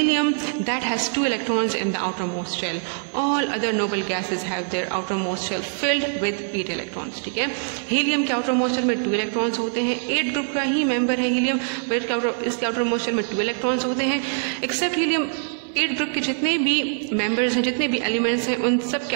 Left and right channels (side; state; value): left; silent; 63 dB below the other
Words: that has 2 electrons in the outer most shell. All other noble gases have their outer most shell filled with 8 electrons, ठीक है. हीलियम के आउटर मोस्ट शेल में 2 इलेक्ट्रॉन्स होते हैं. 8 ग्रुप का ही मेंबर है हीलियम, बट इसके outer most shell में 2 इलेक्ट्रॉन्स होते हैं. एक्सेप्ट हीलियम 8 ग्रुप के जितने भी मेंबर्स हैं, जितने भी एलिमेंट्स हैं, उन सब